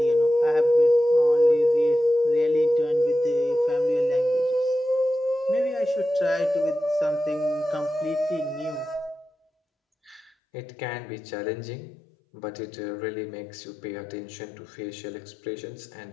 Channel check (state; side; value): drops out; right; at 10.3 s